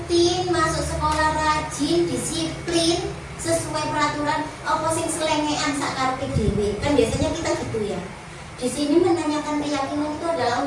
masuk sekolah, rajin, disiplin, sesuai peraturan, apa sing selengean sak karepe dhewe. Kan biasanya kita gitu ya. Di sini menanyakan keyakinan itu adalah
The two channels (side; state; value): both; identical; correlation 1.00